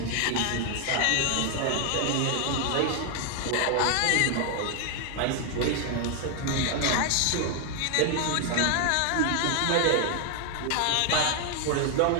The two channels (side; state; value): both; different; correlation 0.00